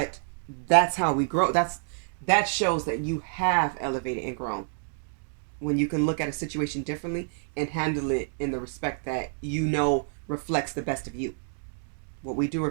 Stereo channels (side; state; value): left; silent; digital silence